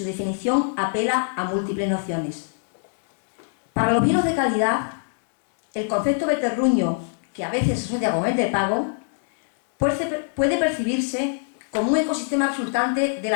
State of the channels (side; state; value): right; silent; digital silence